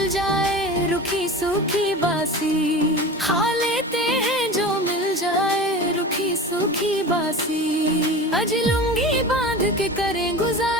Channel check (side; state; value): both; normal; correlation 0.33